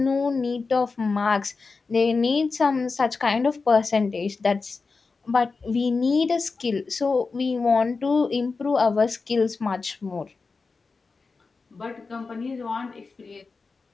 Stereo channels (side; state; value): right; quieter; 4.3 dB